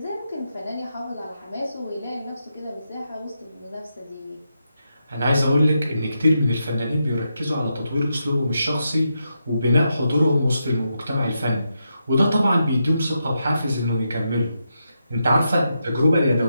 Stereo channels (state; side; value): inverted; both; correlation -0.84